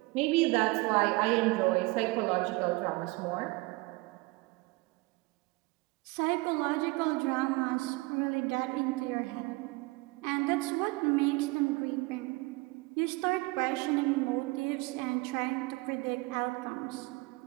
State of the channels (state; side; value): quieter; left; 24.0 dB